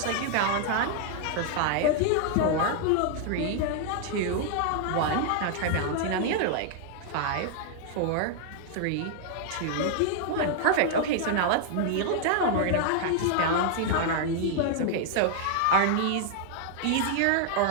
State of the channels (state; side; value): different; both; correlation 0.00